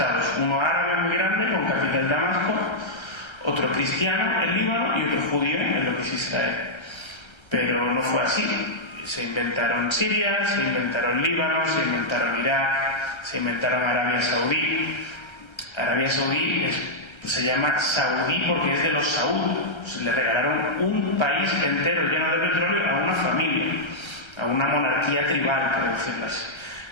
uno árabe muy grande, con capital Damasco, otro cristiano, el Líbano, y otro judío, en lo que es Israel. Pero no fue así. Se inventaron Siria, se inventaron Líbano, se inventaron Irak, se inventaron Arabia Saudí. Arabia Saudí se llama Saudí porque es de los Saud. Le regalaron un país entero lleno de petróleo a una familia, a una monarquía tribal, por decirlo así.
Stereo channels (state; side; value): late; right; 1.3 ms